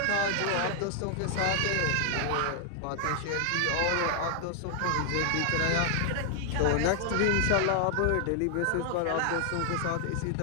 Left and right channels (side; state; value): both; different; correlation 0.00